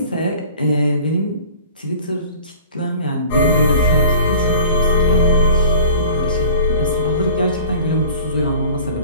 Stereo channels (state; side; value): inverted; both; correlation -0.45